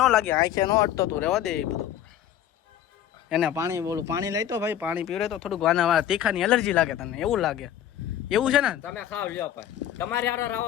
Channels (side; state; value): right; quieter; 11.0 dB